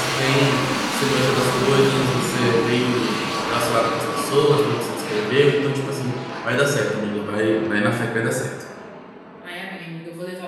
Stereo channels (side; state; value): both; identical; correlation 1.00